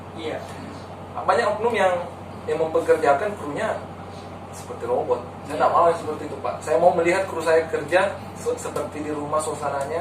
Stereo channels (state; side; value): identical; both; correlation 1.00